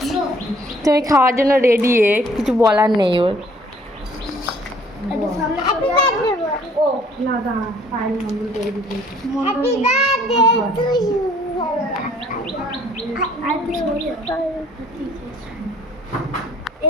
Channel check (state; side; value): normal; both; correlation 0.59